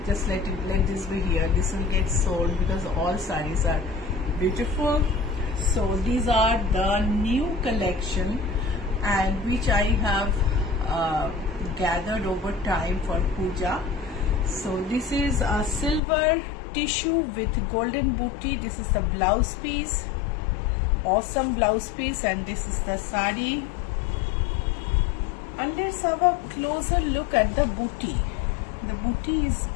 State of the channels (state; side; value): drops out; right; at 16.0 s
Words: just let this be here, this will get sold because all sarees are beautiful. So these are the new collection, and which I have gathered over time for puja. So this is a silver tissue with golden booty. This is the blouse piece, awesome blouse piece, and this is the sari. And let's have a closer look at the booty. The booty is